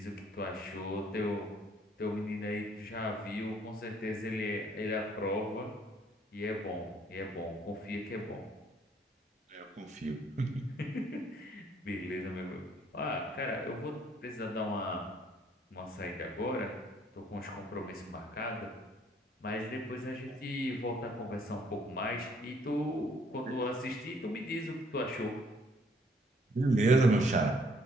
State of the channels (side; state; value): both; normal; correlation 0.64